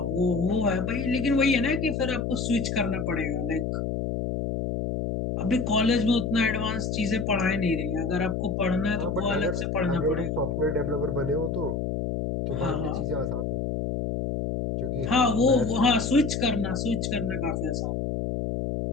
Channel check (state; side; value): noise; left; hum, 1 dB below the sound